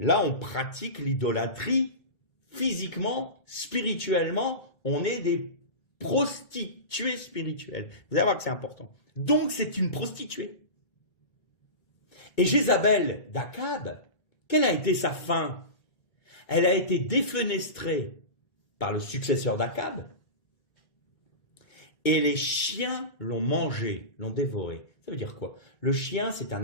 on pratique l'idolâtrie physiquement, spirituellement, on est des prostituées spirituelles. Vous allez voir que c'est important. Donc, c'est une prostituée. Et Jézabel d'Akab, quelle a été sa fin? Elle a été défenestrée par le successeur d'Akab, et les chiens l'ont mangée, l'ont dévorée. Ça veut dire quoi? Le chien, c'est un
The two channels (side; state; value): right; late; 1.8 ms